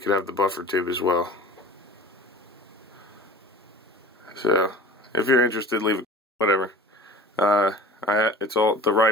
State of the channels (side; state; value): both; normal; correlation 0.40